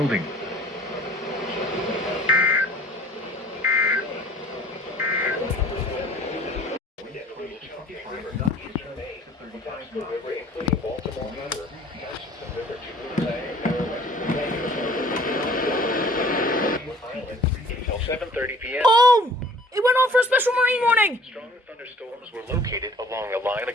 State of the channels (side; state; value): both; normal; correlation 0.52